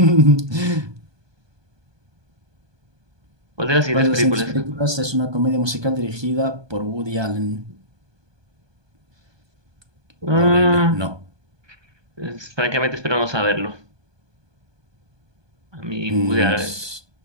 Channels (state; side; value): late; left; 1.2 ms